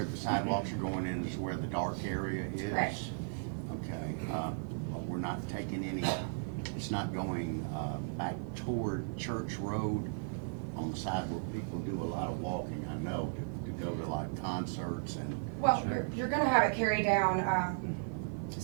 the sidewalks are going in is where the dark area is. Correct. Okay, but we're not taking any, it's not going back toward Church Road on the side where people do a lot of walking, I know, to go to like concerts and. Well, you're gonna have it carry down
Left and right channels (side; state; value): left; silent; 54 dB below the other